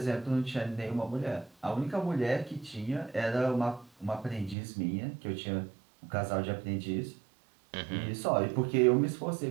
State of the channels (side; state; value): left; drops out; at 4.5 s